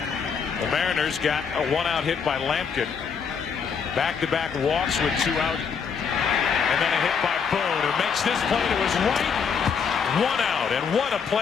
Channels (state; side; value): quieter; right; 6.3 dB